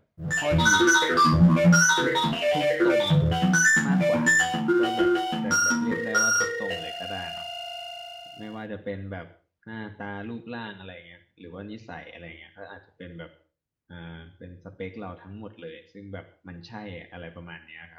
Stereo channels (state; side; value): identical; both; correlation 1.00